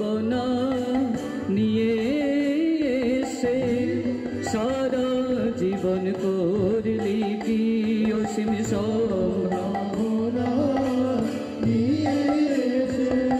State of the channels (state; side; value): identical; both; correlation 1.00